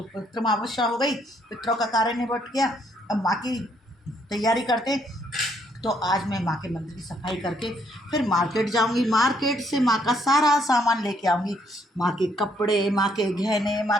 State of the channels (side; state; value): both; normal; correlation 0.70